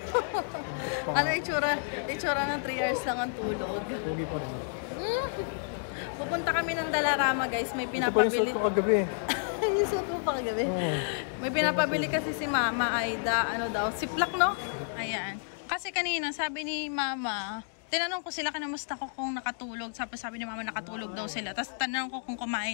Ano itsura? Itsura ng 3 hours lang ang tulog. Pupunta kami ng Dalarama guys. May pinapabili. Isot mo pa kagabi. May pinapabili kasi si Mama Aida. Ano daw? Siplak, no? Ayan. Kasi kanina sabi ni Mama, tinanong ko sila kanamusta ko kung nakatulog. Sabi ni Mama nakatulog daw sila. Tapos tanong ko kung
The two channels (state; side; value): silent; right; digital silence